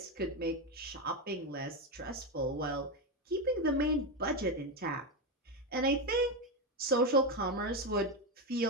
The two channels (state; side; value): normal; both; correlation 0.11